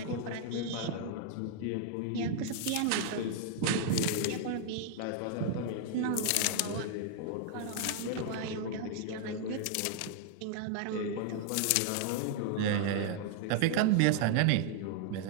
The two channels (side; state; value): both; different; correlation 0.00